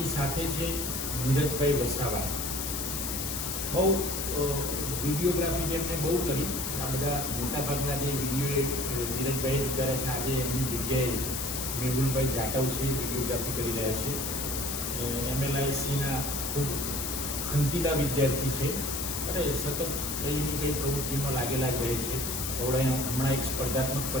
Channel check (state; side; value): noise; left; hiss, 3 dB below the sound